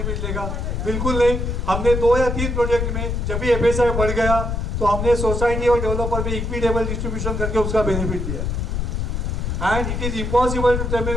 लेगा, बिल्कुल नहीं। हमने 2 या 3 प्रोजेक्ट में जब भी एफएसआई बढ़ गया तो हमने सोसाइटी और डेवलपर में इक्विटेबल डिस्ट्रीब्यूशन करके उसका बेनिफिट दिया। And it is impossible to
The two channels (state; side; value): noise; left; rumble, 1 dB below the sound